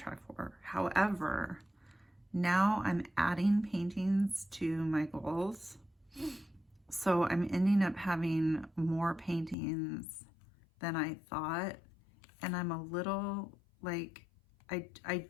for. However, now I'm adding paintings to my goals. So I'm ending up having more paintings than I thought. And I'm a little like, I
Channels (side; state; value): right; drops out; at 9.6 s